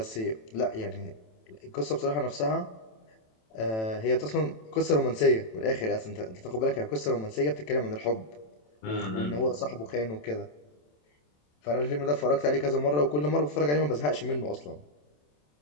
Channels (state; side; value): late; right; 27 ms